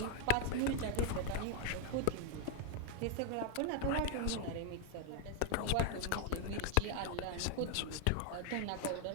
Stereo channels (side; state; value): both; different; correlation 0.00